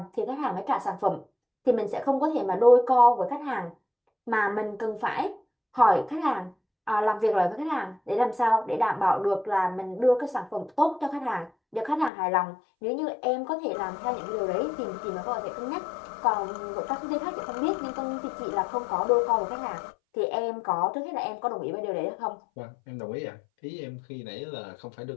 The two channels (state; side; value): drops out; right; at 12.1 s